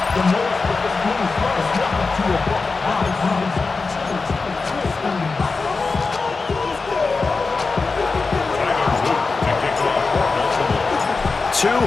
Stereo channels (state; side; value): quieter; right; 4.2 dB